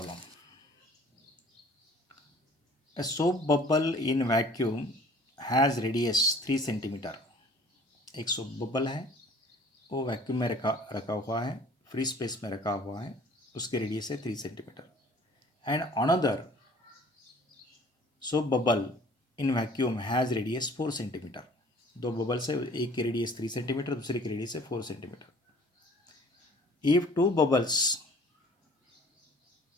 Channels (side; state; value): both; normal; correlation 0.52